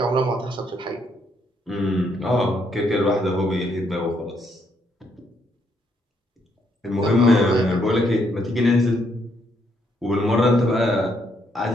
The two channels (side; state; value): both; normal; correlation 0.74